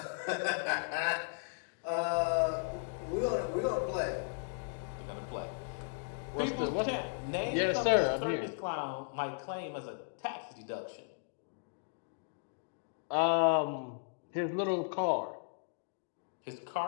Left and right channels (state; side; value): silent; right; digital silence